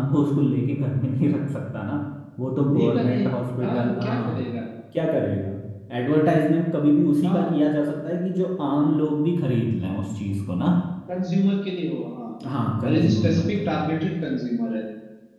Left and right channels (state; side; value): identical; both; correlation 1.00